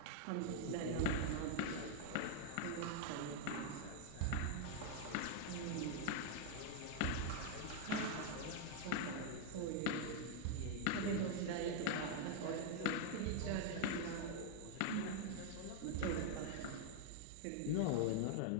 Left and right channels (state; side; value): different; both; correlation 0.00